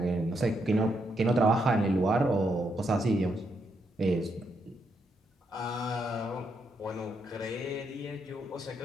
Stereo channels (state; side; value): normal; both; correlation 0.78